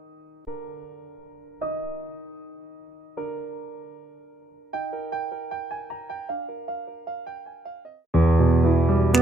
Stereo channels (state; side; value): normal; both; correlation 0.73